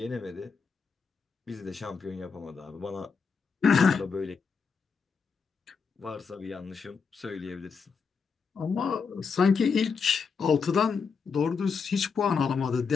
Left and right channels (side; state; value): right; quieter; 5.5 dB